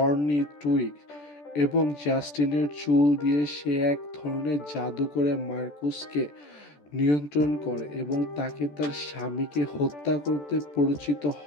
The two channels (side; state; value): right; late; 14 ms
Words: টুইগ এবং জাস্টিনের চুল দিয়ে সে এক ধরনের জাদু করে মার্কোসকে নিয়ন্ত্রণ করে এবং তাকে তার স্বামীকে হত্যা করতে পরিচিত